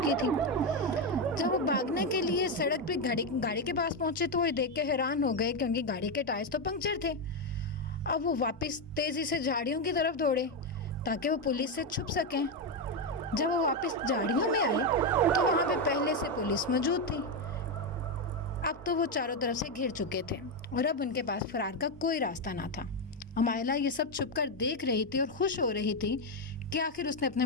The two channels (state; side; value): normal; both; correlation 0.07